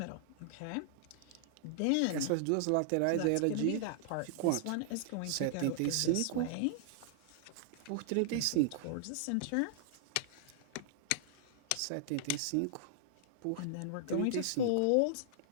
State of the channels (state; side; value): different; both; correlation -0.01